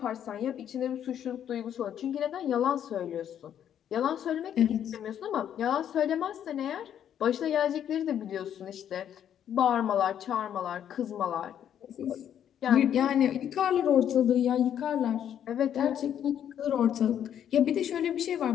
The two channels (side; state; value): right; quieter; 9.7 dB